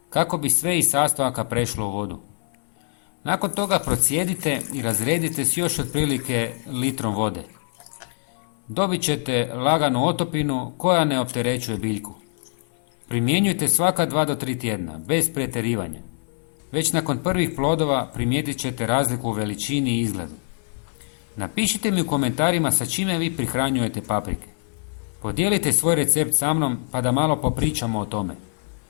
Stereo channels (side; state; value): right; silent; 63 dB below the other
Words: kako bi sve iz sastojaka prešlo u vodu. Nakon toga procijedite i razredite s još otprilike litrom vode. Dobit ćete laganu otopinu koja ne opterećuje biljku. Primjenjujte svaka 2 do 3 tjedna, bez pretjerivanja. Već nakon prvih plodova primijetit ćete razliku u veličini i izgledu. Napišite mi u komentarima sa čime vi prihranjujete paprike. Podijelite svoj recept sa mnom pa da malo popričamo o tome.